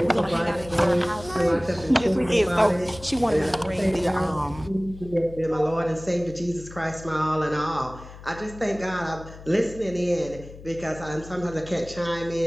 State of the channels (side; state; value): left; noise; hum, 16 dB below the sound